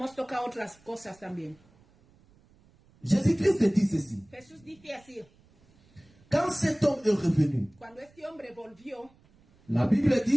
tocado otras cosas también. Jésus-Christ dit ceci. Jesús dice así, Quand cet homme est revenu, cuando este hombre volvió, la Bible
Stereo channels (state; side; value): noise; right; rumble, 30 dB below the sound